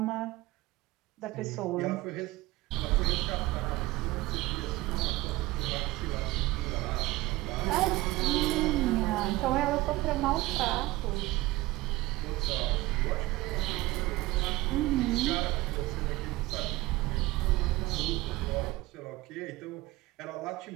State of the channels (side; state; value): left; quieter; 19.1 dB